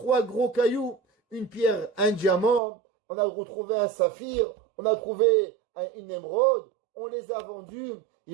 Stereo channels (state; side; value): drops out; left; at 2.6 s